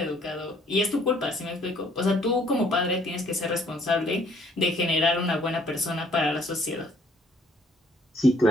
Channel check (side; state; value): both; normal; correlation 0.62